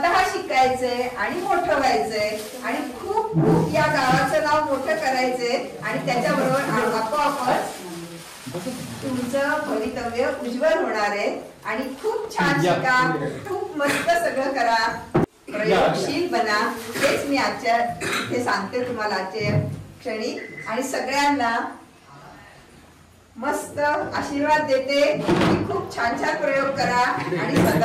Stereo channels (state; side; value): identical; both; correlation 1.00